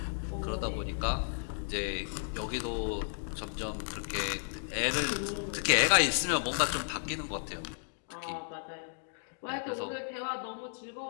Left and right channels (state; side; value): silent; right; digital silence